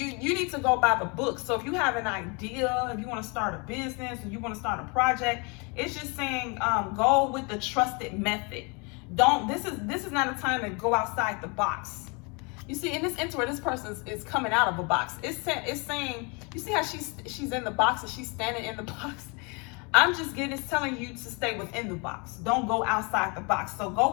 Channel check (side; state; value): right; quieter; 31.3 dB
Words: need to go by the book. So if you have an idea, if you want to start a business, or you want to start a project, it's just saying go with the trusted method. This is not a time to go outside the box. You see, in this intro, this person is coming out of a box. It's saying, you see how she's in the box and she's standing in the box? It's telling you to stay within the box. Don't go outside the box. So go